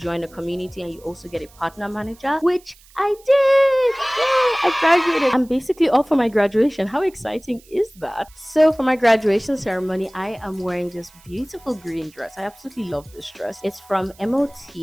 a community, and you also get a partner manager, which I did! Yay! I graduated. I'm basically all for my graduation. How exciting is that? So for my graduation ceremony, I am wearing this beautiful green dress. I absolutely love this dress. It's from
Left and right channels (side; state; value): right; noise; hiss, 27 dB below the sound